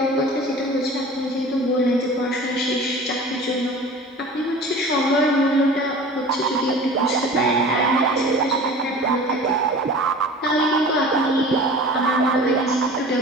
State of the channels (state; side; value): normal; both; correlation 0.40